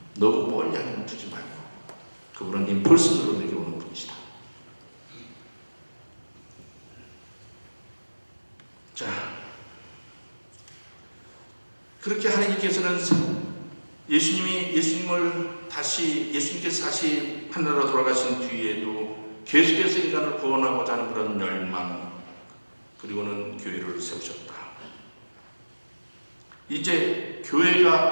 너무 멀리 하나님 두지 말고. 그분은 임펄스로 내게 오는 분이시다. 자, 그렇게 하나님께서는 예수님께서 다시 하늘로 돌아가신 뒤에도 계속해서 인간을 구원하고자 하는 그런 열망, 그리고는 교회를 세우셨다. 이제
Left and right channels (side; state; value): both; inverted; correlation -1.00